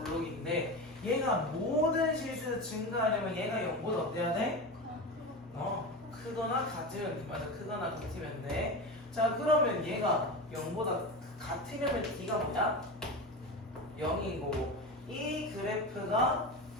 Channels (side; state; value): both; normal; correlation 0.24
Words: 블록인데 얘가 모든 실수에서 증가하려면 얘가 0보다 어때야 돼? 크거나 같으면, 맞아, 크거나 같으면 돼. 자, 그러면 얘가 0보다 같으려면 d가 뭐야? 0인 거고, 이 그래프가